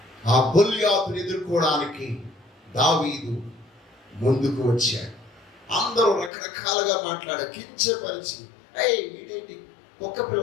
ఆ గొల్యాతుని ఎదుర్కోవడానికి దావీదు ముందుకు వచ్చాడు. అందరూ రకరకాలుగా మాట్లాడారు, కించపరిచి, వీడేంటి ఒక్క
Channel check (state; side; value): drops out; right; at 6.3 s